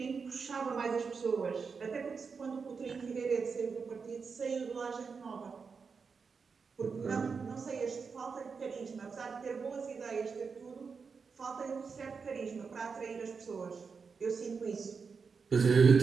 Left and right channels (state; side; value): quieter; left; 5.3 dB